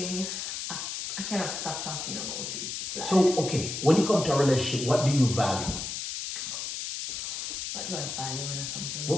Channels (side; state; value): left; noise; hiss, 4 dB below the sound